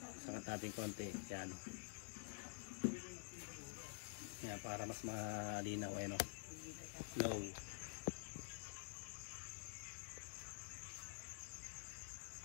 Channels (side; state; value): right; silent; digital silence